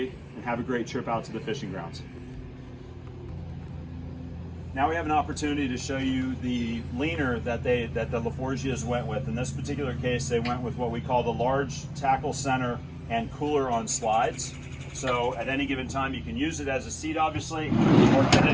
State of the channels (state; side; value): identical; both; correlation 1.00